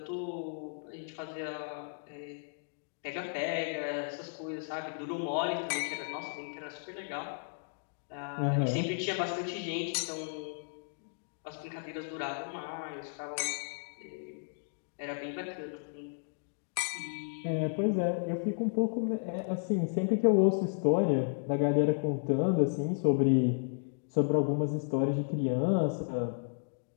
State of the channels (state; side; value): silent; right; digital silence